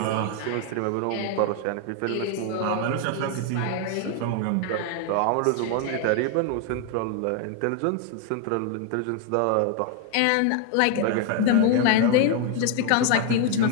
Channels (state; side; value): different; both; correlation 0.00